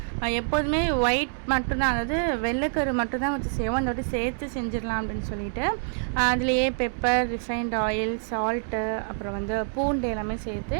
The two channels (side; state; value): left; silent; 61 dB below the other